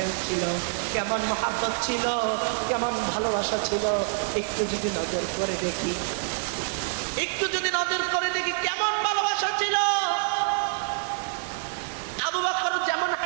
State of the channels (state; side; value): silent; left; digital silence